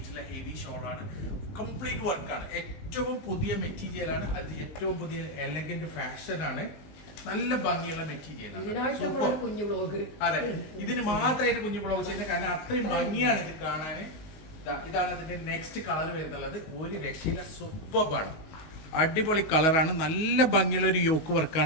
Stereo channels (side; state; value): right; late; 19 ms